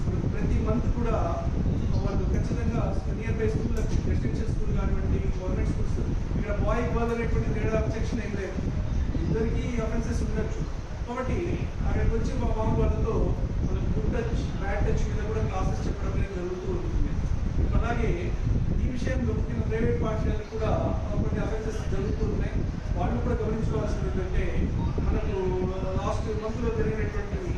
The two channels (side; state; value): both; identical; correlation 1.00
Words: ప్రతి మంత్ కూడా వాళ్ళు ఖచ్చితంగా near by school, residential school కానివ్వండి, గవర్నమెంట్ స్కూల్స్, ఇక్కడ బాయ్ గర్ల్ అనేటువంటి తేడా అబ్జెక్షన్ ఏం లేదు, ఇద్దరికి అఫెన్సెస్ ఉండొచ్చు. కాబట్టి అక్కడికి వచ్చి మా బాబు వాళ్ళతో వాళ్ళకి గుడ్ టచ్, బ్యాడ్ టచ్ మీద కూడా క్లాసెస్ చెప్పడం అనేది జరుగుతూ ఉంటుంది. అలాగే ఈ విషయంలో ముఖ్యంగా ప్రైవేట్ పాఠశాలకు కూడా కొన్ని అఫెన్సెస్ జరుగుతూ ఉన్నాయి. వాళ్ళు కూడా గమనించుకోవాల్సింది ఏంటంటే, మనకు లాస్ట్ మంత్లో జరిగినటువంటి